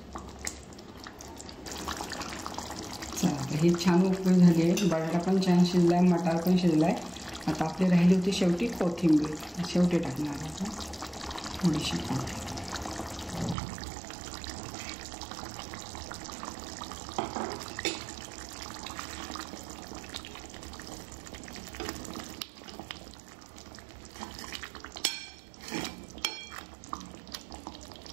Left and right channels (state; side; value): drops out; left; at 13.6 s